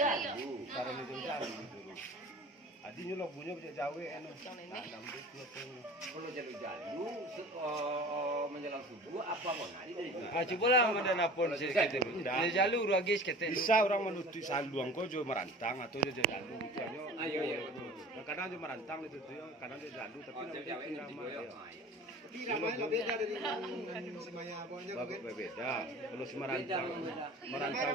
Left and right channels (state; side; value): normal; both; correlation 0.41